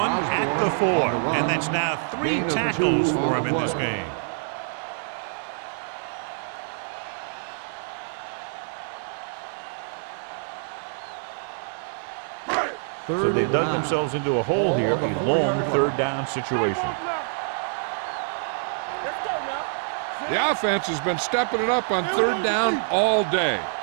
at the 4. And that's now 3 tackles for him in this game. So they dug themselves into a hole here, a long third down situation. The offense has been stepping it up on third down all day.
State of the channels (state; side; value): silent; left; digital silence